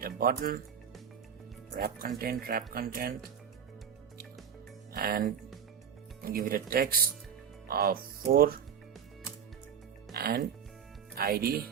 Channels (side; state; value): left; quieter; 7.9 dB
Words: a button, wrap content, and give it a text of 4 and ID